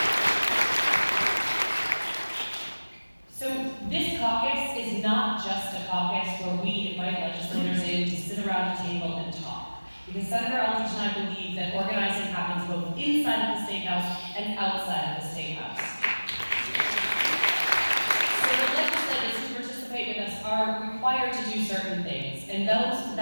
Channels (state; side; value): inverted; both; correlation -1.00